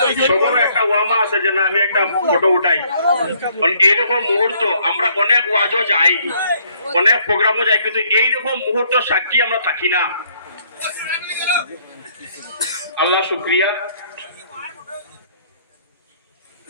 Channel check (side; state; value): both; inverted; correlation -0.65